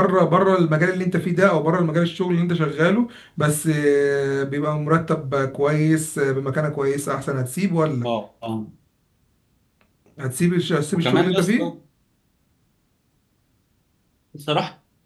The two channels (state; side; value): identical; both; correlation 1.00